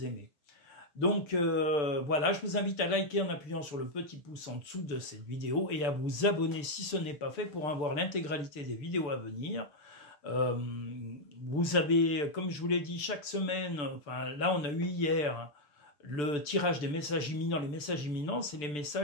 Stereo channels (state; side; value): late; right; 6.8 ms